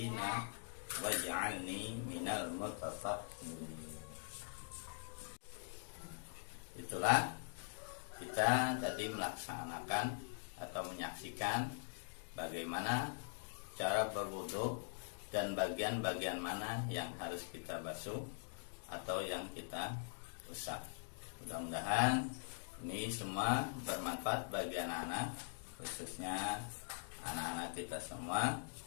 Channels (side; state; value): right; silent; digital silence